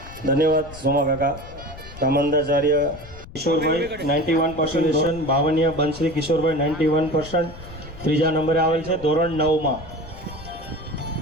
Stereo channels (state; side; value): noise; left; rumble, 16 dB below the sound